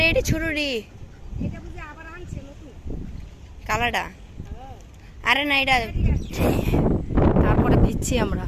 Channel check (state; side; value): identical; both; correlation 1.00